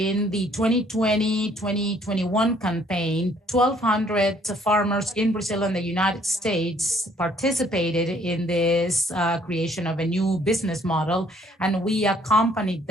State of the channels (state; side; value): normal; both; correlation 0.63